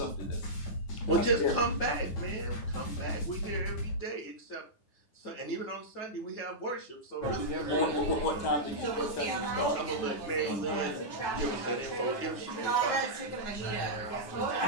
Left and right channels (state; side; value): late; right; 9.2 ms